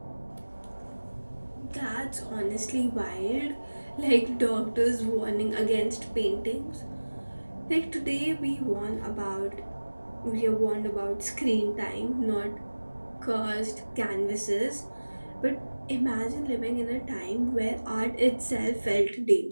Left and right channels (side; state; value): both; inverted; correlation -1.00